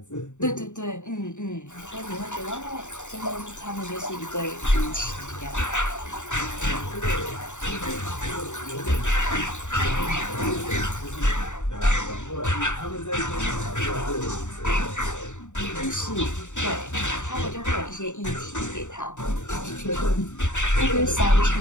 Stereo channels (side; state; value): right; late; 0.84 ms